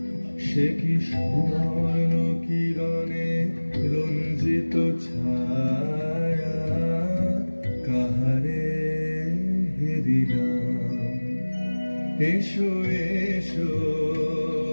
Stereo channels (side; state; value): both; inverted; correlation -1.00